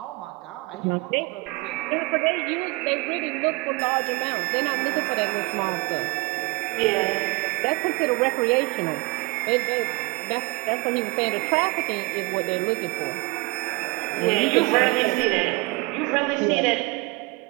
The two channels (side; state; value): left; quieter; 25.1 dB